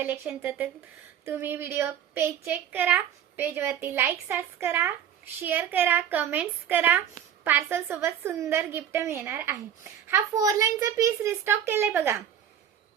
तर तुम्ही व्हिडिओ पेज चेक करा, पेज वरती लाईक सर्च करा, शेअर करा, कमेंट्स करा। पार्सल सोबत सुंदर गिफ्ट मिळणार आहे। हा 4 लाईनचा पीस रिस्टॉक केलाय बघा,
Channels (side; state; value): left; quieter; 9.5 dB